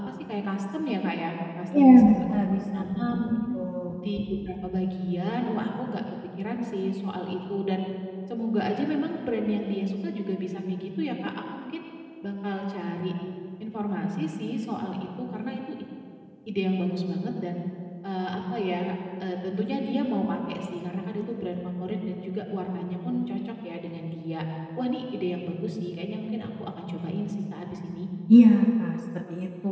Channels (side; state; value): both; identical; correlation 1.00